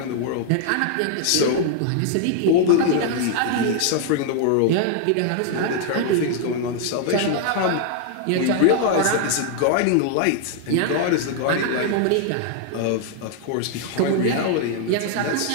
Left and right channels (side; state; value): both; different; correlation 0.00